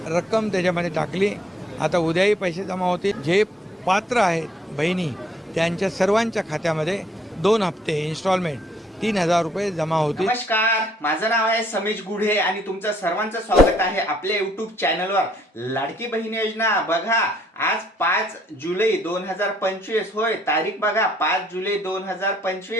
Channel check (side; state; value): both; normal; correlation 0.66